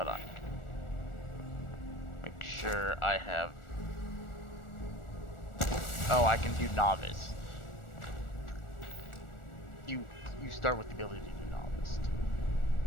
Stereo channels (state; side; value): late; right; 1.4 ms